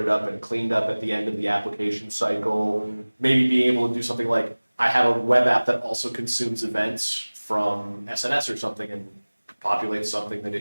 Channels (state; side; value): inverted; both; correlation -1.00